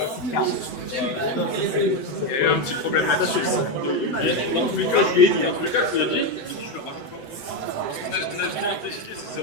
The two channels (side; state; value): right; late; 7.9 ms